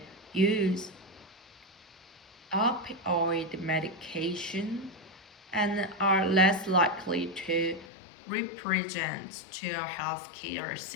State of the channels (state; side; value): drops out; right; at 7.9 s